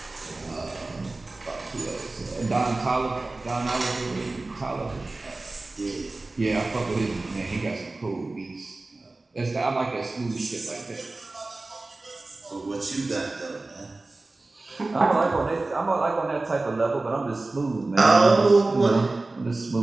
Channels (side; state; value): left; quieter; 3.2 dB